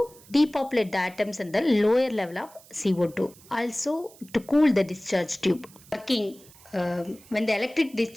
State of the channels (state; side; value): noise; right; hiss, 24 dB below the sound